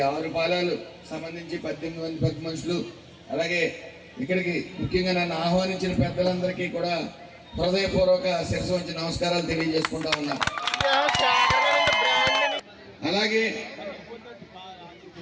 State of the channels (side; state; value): both; identical; correlation 1.00